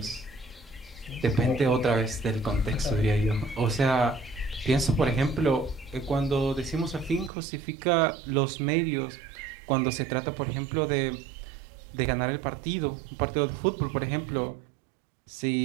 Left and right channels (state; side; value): drops out; left; at 7.3 s